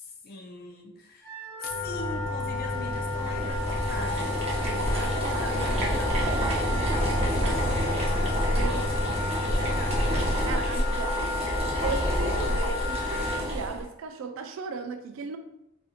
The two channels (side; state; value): both; normal; correlation 0.55